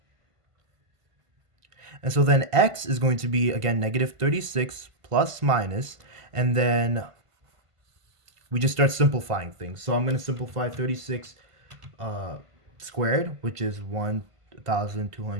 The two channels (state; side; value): late; left; 1.5 ms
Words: And so then x is going to be, again, negative 36 plus minus, and then we just start simplifying things. So I'm going to simplify 36 squared, which is